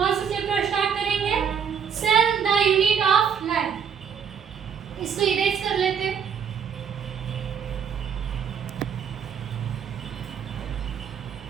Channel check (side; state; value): left; quieter; 7.4 dB